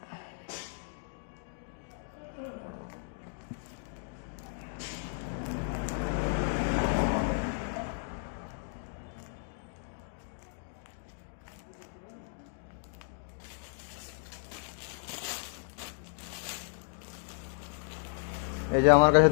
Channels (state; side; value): silent; right; digital silence